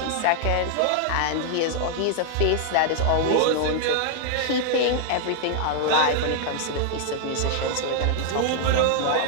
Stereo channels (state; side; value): different; both; correlation 0.00